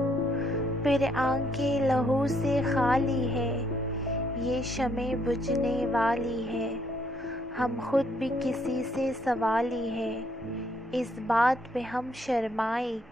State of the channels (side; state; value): both; normal; correlation 0.70